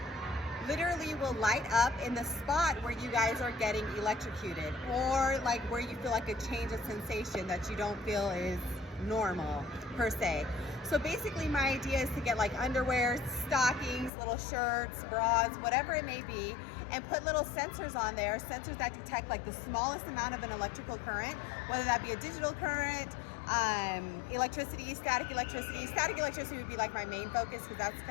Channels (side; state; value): right; drops out; at 14.1 s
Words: literally will light up in the spot where you guys are getting electrocuted, or like where you feel like a change of sensation that you don't feel is normal per se. So basically my idea is to get like underwear, stockings, little shirts, bras, whatever it may be, and put little sensors on there, sensors that detect like the smallest amount of an electrical current, whether that be a digital current, electricity, static electricity. Static electricity would be like my main focus because that's